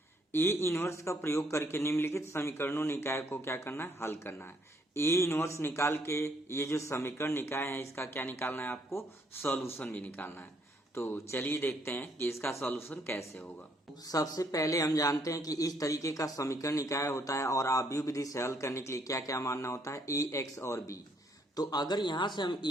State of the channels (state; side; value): normal; both; correlation 0.69